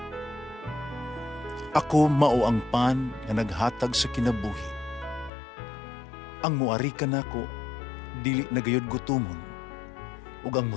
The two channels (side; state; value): right; drops out; at 5.3 s